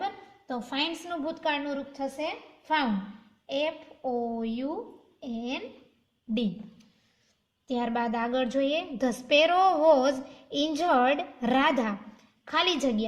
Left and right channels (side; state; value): both; identical; correlation 1.00